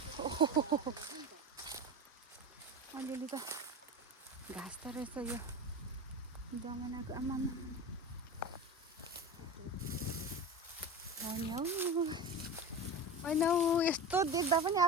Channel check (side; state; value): both; normal; correlation 0.28